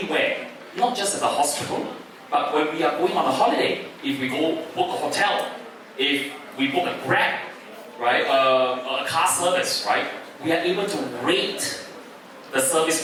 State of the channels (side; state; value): both; identical; correlation 1.00